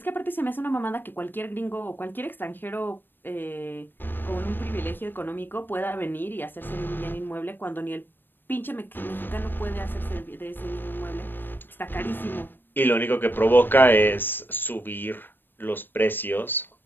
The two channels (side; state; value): right; late; 0.095 ms